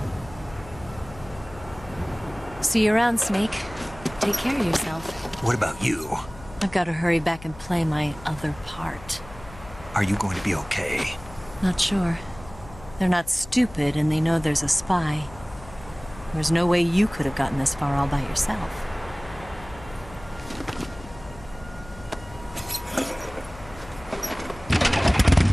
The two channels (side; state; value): left; noise; hum, 18 dB below the sound